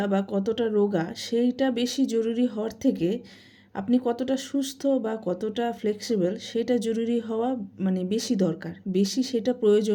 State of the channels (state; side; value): identical; both; correlation 1.00